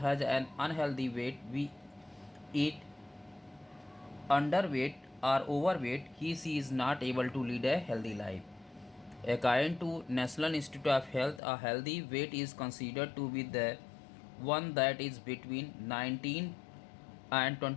an unhealthy weight, we eat underweight or overweight, he is not able to lead a healthy life. According to National Institute of Health, a healthy weight is considered to be the one that is between 19 and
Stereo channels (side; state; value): right; drops out; at 11.4 s